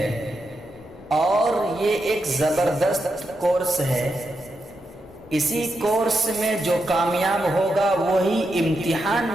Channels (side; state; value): both; normal; correlation 0.85